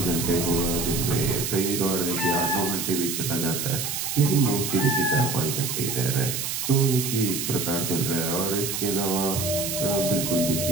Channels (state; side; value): noise; right; hiss, 3 dB below the sound